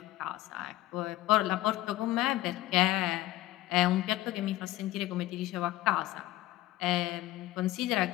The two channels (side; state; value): right; quieter; 16.2 dB